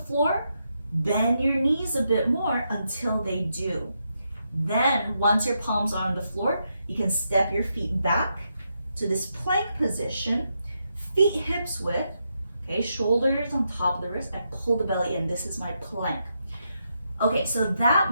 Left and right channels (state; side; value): inverted; both; correlation -0.82